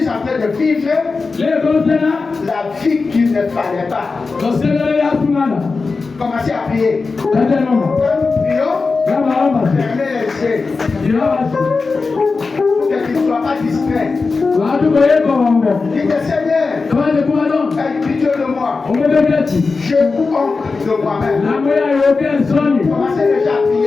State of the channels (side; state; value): right; quieter; 4.2 dB